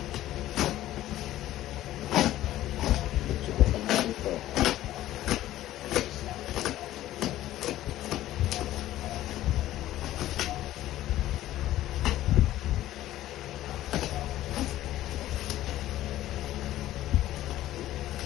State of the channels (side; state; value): right; quieter; 14.2 dB